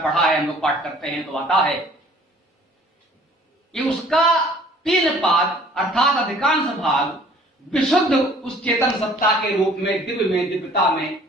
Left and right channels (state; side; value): normal; both; correlation 0.54